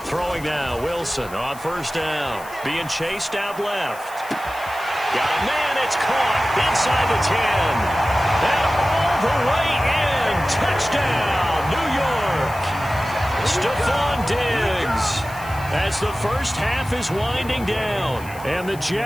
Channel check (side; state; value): left; noise; hiss, 19 dB below the sound